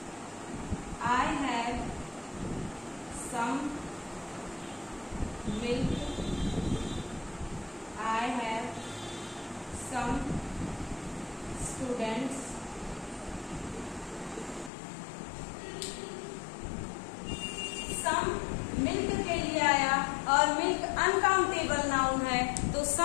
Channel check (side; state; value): right; drops out; at 14.7 s